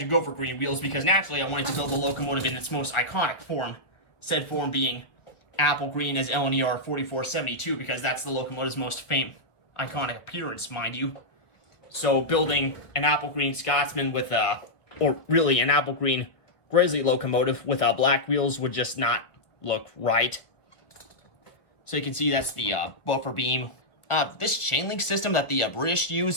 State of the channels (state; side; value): late; right; 1.6 ms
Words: go for green wheels because naturally I wanted to build the locomotive in its most iconic form, said form being apple green as LNER 4472, because that's the locomotive's most iconic appearance, mind you. So building an apple green Scotsman with or really an apple green Gresley locomotive with black wheels would just not look right. So you can see that's the buffer beam. This chain link system that the British